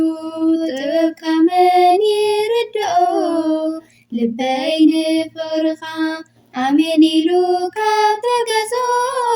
ጥበብካ መን ይርድኦ ልበይ ንፍቅርኻ አሜን ኢሉ ካብ ተገዝኦ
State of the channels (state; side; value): identical; both; correlation 1.00